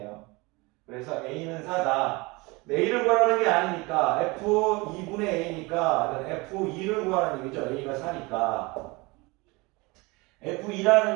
그래서 a는 4다. a를 구하라는 게 아니니까 f2분의 a니까 f2를 구하라는 얘기죠. a가 4니까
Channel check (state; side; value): quieter; left; 25.0 dB